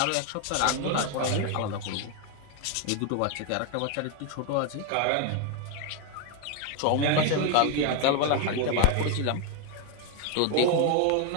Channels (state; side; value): different; both; correlation 0.01